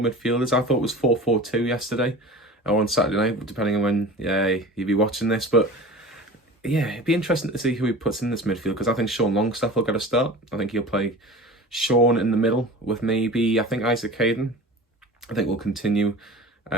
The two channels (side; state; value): both; normal; correlation 0.37